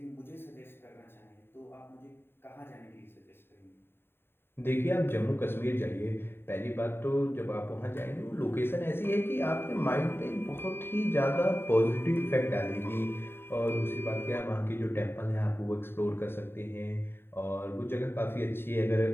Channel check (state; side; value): late; right; 0.11 ms